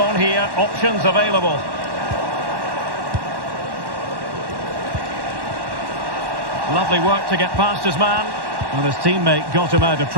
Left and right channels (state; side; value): late; left; 1.1 ms